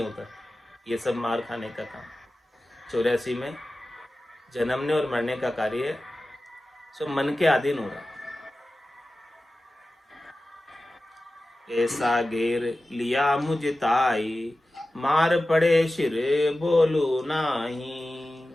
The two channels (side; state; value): both; normal; correlation 0.95